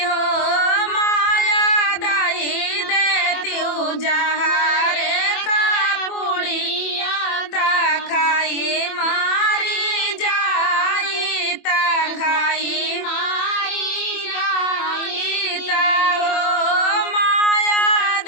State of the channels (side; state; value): right; late; 24 ms